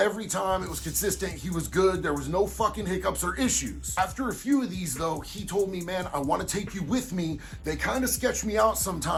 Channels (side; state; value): both; identical; correlation 1.00